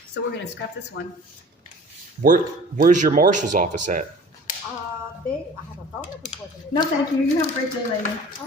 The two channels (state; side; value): normal; both; correlation 0.45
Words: So we're going to scrap this one. Where's your marshal's office at? I have a phone number for them. No, thank you. You have a great day, lady.